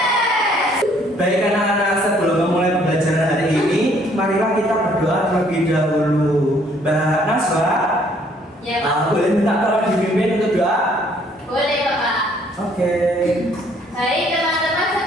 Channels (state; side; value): normal; both; correlation 0.63